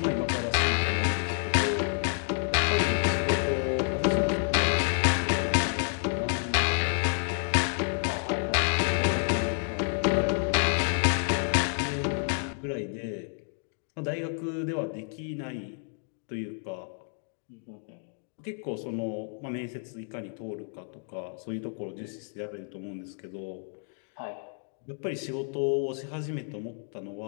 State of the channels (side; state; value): right; silent; 58 dB below the other